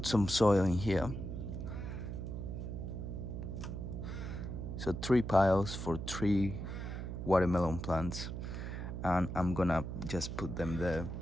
some soil in here. So 3 piles for 3 watermelon plants, and I'm gonna just put them there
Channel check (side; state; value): right; noise; hum, 5 dB below the sound